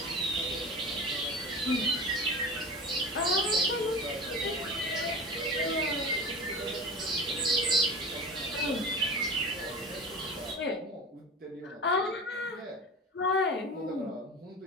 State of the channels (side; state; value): both; normal; correlation 0.32